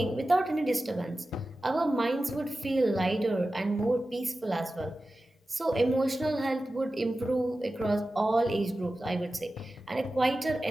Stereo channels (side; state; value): both; normal; correlation 0.94